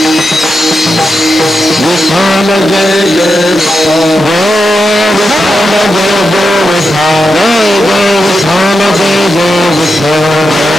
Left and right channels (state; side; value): normal; both; correlation 0.88